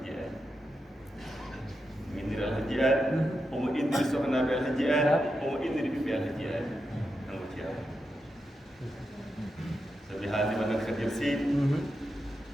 aadi indiri alhaji aadi omo indiri sohnaɓe alhaji aadi omo indiri ɓiɓɓe alhaji aadi kanko ceerno sabi haaldima nan kadir seydi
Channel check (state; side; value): normal; both; correlation 0.87